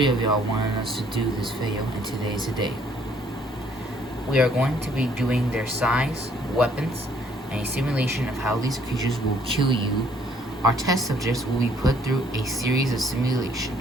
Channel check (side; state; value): both; normal; correlation 0.63